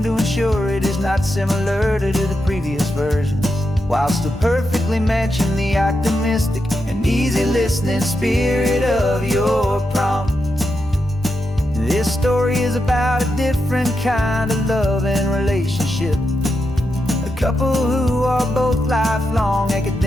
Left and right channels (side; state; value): both; normal; correlation 0.86